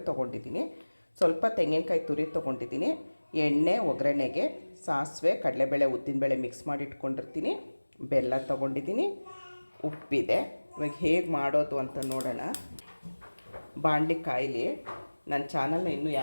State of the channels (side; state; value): both; inverted; correlation -1.00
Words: ತೊಗೊಂಡಿದ್ದೀನಿ, ಸ್ವಲ್ಪ ತೆಂಗಿನಕಾಯಿ ತುರಿ ತೊಗೊಂಡಿದ್ದೀನಿ, ಎಣ್ಣೆ, ಒಗ್ಗರಣೆಗೆ ಸಾಸಿವೆ, ಕಡಲೆಬೇಳೆ, ಉದ್ದಿನಬೇಳೆ ಮಿಕ್ಸ್ ಮಾಡಿ ಇಟ್ಕೊಂಡಿರ್ತೀನಿ, ಬೆಲ್ಲ ತೊಗೊಂಡಿದ್ದೀನಿ, ಉಪ್ಪಿದೆ. ಇವಾಗ ಹೇಗೆ ಮಾಡೋದು ಅಂತ ನೋಡೋಣ. ಬಾಣಲಿ ಕಾಯಿಲಿ. ನನ್ನ ಚಾನಲ್ನ ಇನ್ನೂ